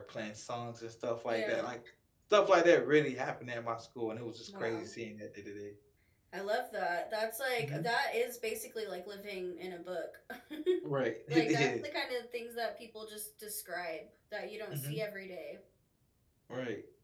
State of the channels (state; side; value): identical; both; correlation 1.00